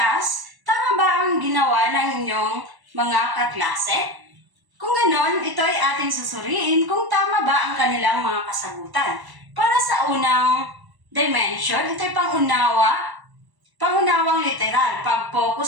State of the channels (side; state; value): left; late; 1.0 ms